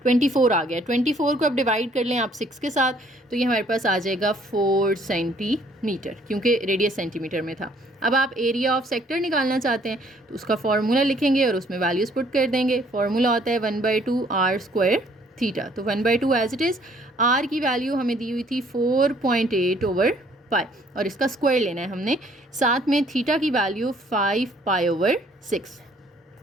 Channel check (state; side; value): normal; both; correlation 0.62